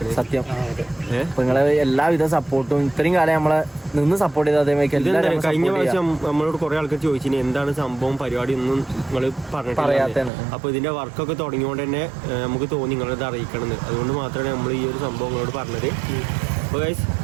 സത്യം. അപ്പൊ നിങ്ങളെ എല്ലാവിധ സപ്പോർട്ടും ഇത്രയും കാലം നമ്മളെ നിന്ന് സപ്പോർട്ട് ചെയ്ത അതേമാതിരി കഴിഞ്ഞ പ്രാവശ്യം നമ്മളോട് കുറെ ആൾക്കാർ ചോദിച്ചിന് എന്താണ് സംഭവം പരിപാടി ഒന്നും നിങ്ങൾ പറഞ്ഞിട്ടില്ല. അപ്പൊ ഇതിന്റെ വർക്കൊക്കെ തുടങ്ങിയോണ്ട് തന്നെ നമുക്ക് തോന്നി നിങ്ങളത് അറിയിക്കണമെന്ന്. അതുകൊണ്ട് മാത്രമാണ് നമ്മൾ ഈ ഒരു സംഭവം നിങ്ങളോട് പറഞ്ഞത്. അപ്പൊ ഗൈസ്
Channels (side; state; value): left; drops out; at 10.3 s